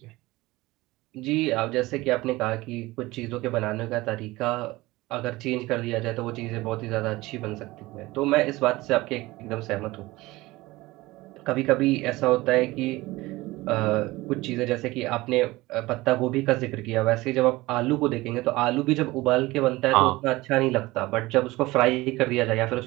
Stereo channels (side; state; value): left; quieter; 19.8 dB